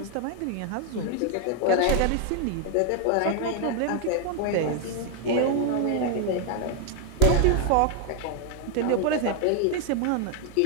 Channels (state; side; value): different; both; correlation 0.00